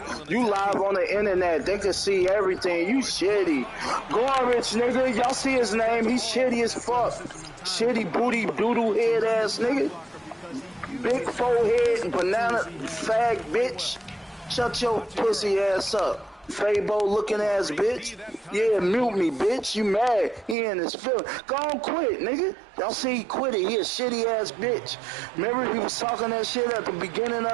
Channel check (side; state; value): left; drops out; at 20.6 s